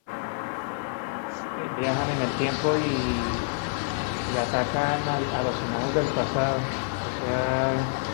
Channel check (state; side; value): silent; right; digital silence